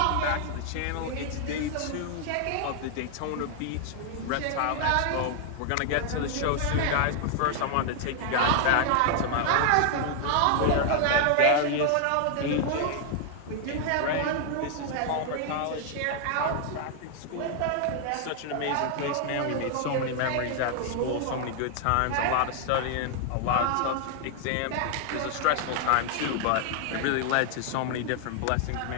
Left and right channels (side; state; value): both; different; correlation 0.00